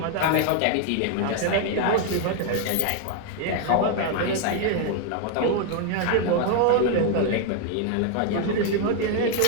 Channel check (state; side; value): different; both; correlation 0.00